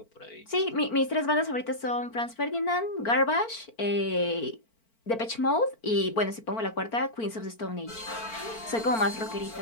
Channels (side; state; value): right; late; 4.4 ms